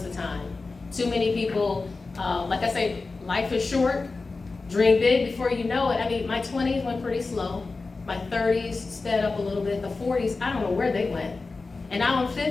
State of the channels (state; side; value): quieter; right; 3.9 dB